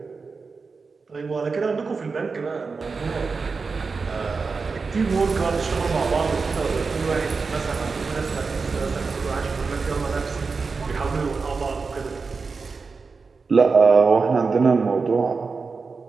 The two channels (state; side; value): quieter; left; 4.6 dB